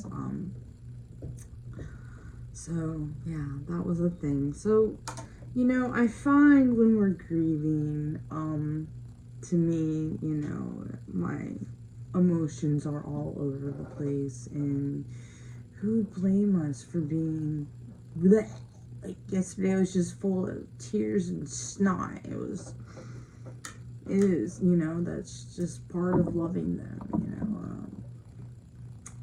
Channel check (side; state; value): both; identical; correlation 1.00